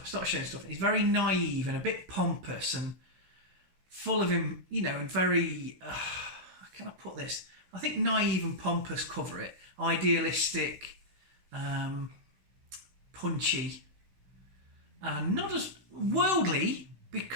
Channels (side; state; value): left; late; 16 ms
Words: start showing stuff. He's very naive and a bit pompous and full of him, you know, and very, how can I put this? I think naive and pompous cover it. Idealistic, punchy, and not as worldly